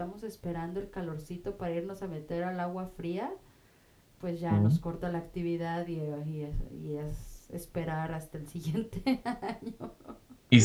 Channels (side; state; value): both; identical; correlation 1.00